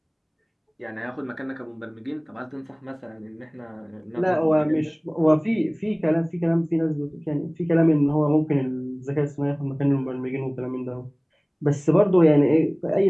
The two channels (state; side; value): identical; both; correlation 1.00